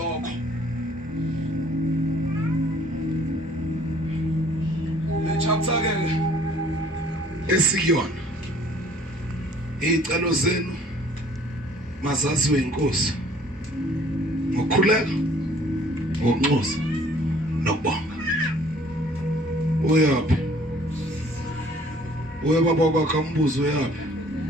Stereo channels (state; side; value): normal; both; correlation 0.56